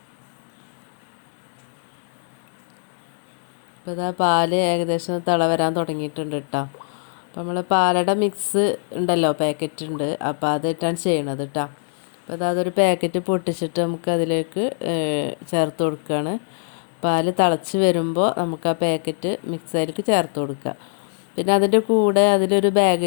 ഇപ്പോൾ ഇതാ പാല് ഏകദേശം തിള വരാൻ തുടങ്ങിയിട്ടുണ്ട് കേട്ടോ. അപ്പോൾ നമ്മൾ പാലട മിക്സ് ഉണ്ടല്ലോ, പാക്കറ്റ് ഉണ്ട്, അപ്പോൾ അതിട്ടാണ് ചെയ്യണത് കേട്ടോ. അപ്പോൾ അതൊരു പാക്കറ്റ് പൊട്ടിച്ചിട്ട് നമുക്ക് അതിലേക്ക് ചേർത്ത് കൊടുക്കുകയാണ്. പാല് തിളച്ച് വരുമ്പോൾ നമുക്ക് ആ പാക്കറ്റ് മിക്സിലേക്ക് ചേർത്ത് കൊടുക്കുക. പിന്നെ അതിൻ്റെ കൂടെ അതിലൊരു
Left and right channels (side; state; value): right; silent; digital silence